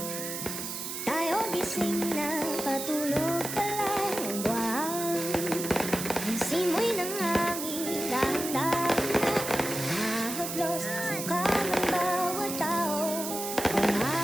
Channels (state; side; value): noise; right; hiss, 6 dB below the sound